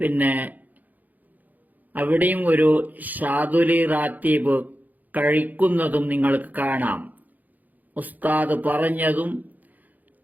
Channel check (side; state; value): left; late; 0.082 ms